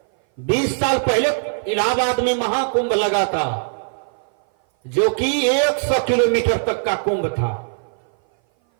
20 साल पहले इलाहाबाद में महाकुंभ लगा था, जो कि 100 किलोमीटर तक का कुंभ था।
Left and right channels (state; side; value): silent; left; 58 dB below the other